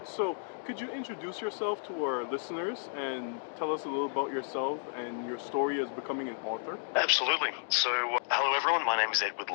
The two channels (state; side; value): silent; right; digital silence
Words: So, could you introduce yourself to our listeners and tell us a little about yourself and your story as becoming an author? Absolutely. So, hello everyone, my name is Edward